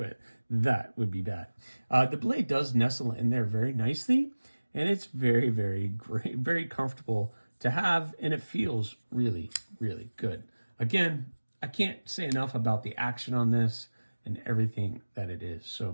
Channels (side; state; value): both; inverted; correlation -1.00